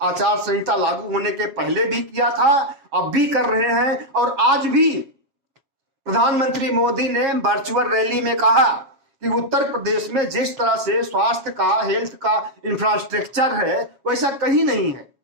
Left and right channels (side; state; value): left; late; 7.3 ms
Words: आचार संहिता लागू होने के पहले भी किया था, अब भी कर रहे हैं। और आज भी प्रधानमंत्री मोदी ने वर्चुअल रैली में कहा कि उत्तर प्रदेश में जिस तरह से स्वास्थ्य का, हेल्थ का इंफ्रास्ट्रक्चर है, वैसा कहीं नहीं है।